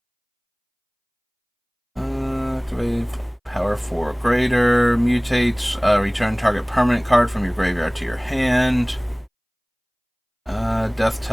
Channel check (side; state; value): both; identical; correlation 1.00